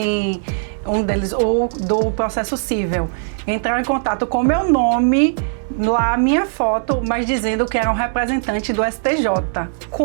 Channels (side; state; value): left; silent; digital silence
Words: um deles, ou do processo cível. Entraram em contato com meu nome, lá minha foto, mas dizendo que era um representante do STJ.